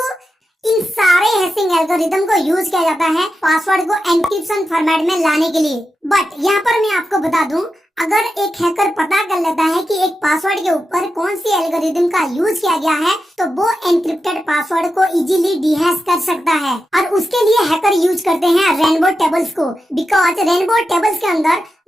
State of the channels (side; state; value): both; normal; correlation 0.89